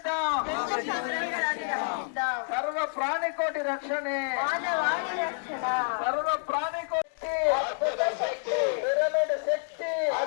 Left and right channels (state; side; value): silent; right; digital silence